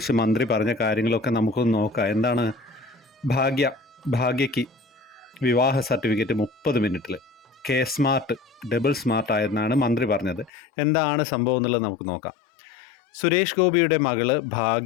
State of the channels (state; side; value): drops out; right; at 10.5 s